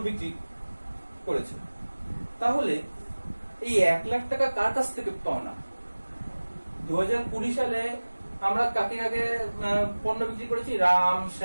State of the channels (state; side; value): inverted; both; correlation -1.00